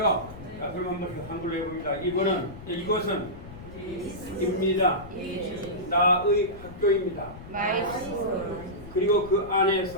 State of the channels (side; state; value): left; noise; rumble, 15 dB below the sound